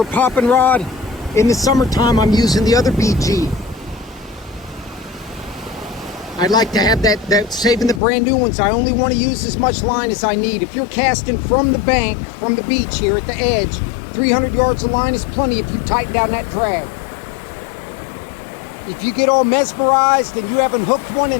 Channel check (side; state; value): right; drops out; at 8.0 s